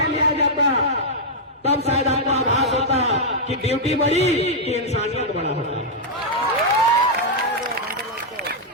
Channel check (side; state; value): both; normal; correlation -0.06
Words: लिया जाता, तब शायद आपको आभास होता कि ड्यूटी बड़ी कि इंसानियत बड़ा होता है।